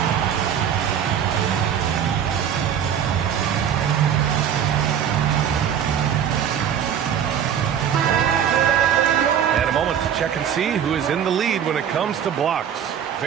Check and see who is in the lead when it comes to blocks.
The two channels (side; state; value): left; quieter; 8.8 dB